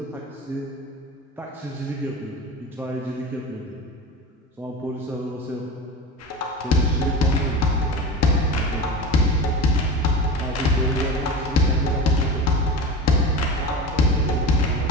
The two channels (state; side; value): normal; both; correlation 0.28